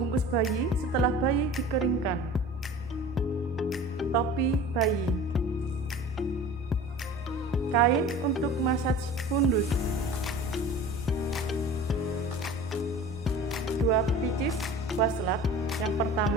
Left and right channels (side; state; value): both; normal; correlation 0.40